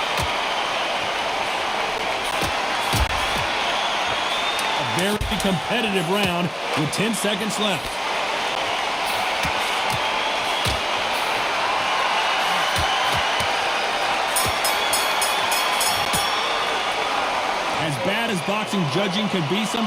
A very competitive round with 10 seconds left. As bad as boxing judging can be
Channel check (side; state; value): both; identical; correlation 1.00